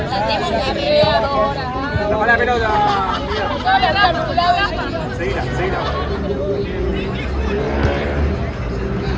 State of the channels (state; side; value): identical; both; correlation 1.00